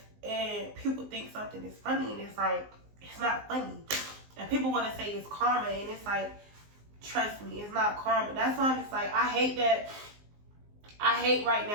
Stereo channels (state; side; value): late; left; 19 ms